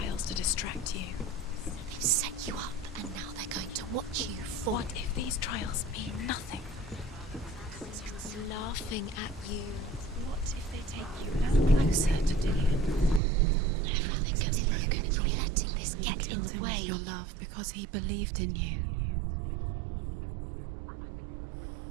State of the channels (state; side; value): drops out; left; at 13.2 s